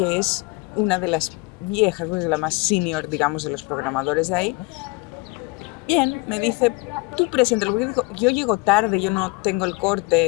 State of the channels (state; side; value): quieter; right; 26.5 dB